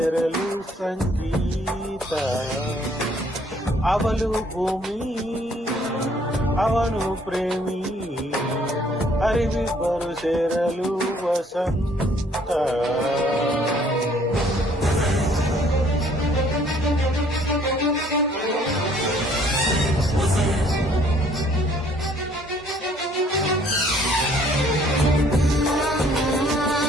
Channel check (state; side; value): normal; both; correlation 0.61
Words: ಸಂಗೀತ. ಅವಳು ಭೂಮಿ, ಅವನು ಪ್ರೇಮಿ, ಅರಿವಿಬ್ಬರು ಸೇರಲು ವಸಂತ.